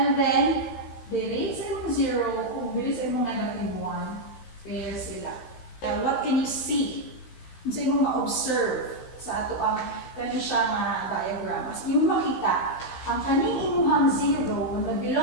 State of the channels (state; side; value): late; right; 16 ms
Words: then, diri sa imong 0, kung diri sa imong -1, pair sila. What can you see? Kung sa imong ma-observe sa ato ang kani siya nga diagram. As imong makita, ang kaning imuhang 0 na